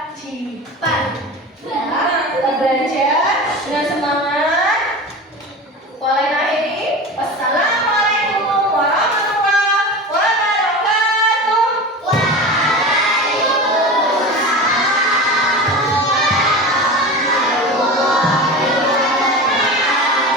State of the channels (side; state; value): both; normal; correlation 0.30